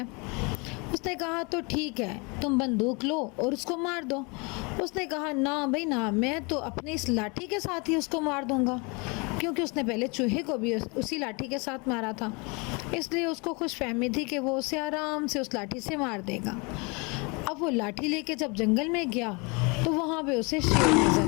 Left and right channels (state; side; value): quieter; right; 29.8 dB